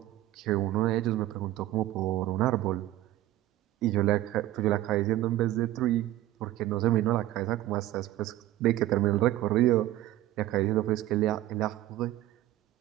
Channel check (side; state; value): left; quieter; 14.6 dB